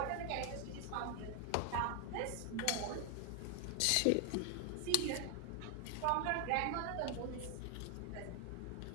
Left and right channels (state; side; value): different; both; correlation 0.01